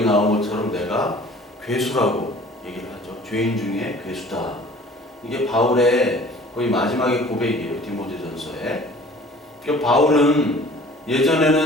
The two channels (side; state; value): both; normal; correlation 0.48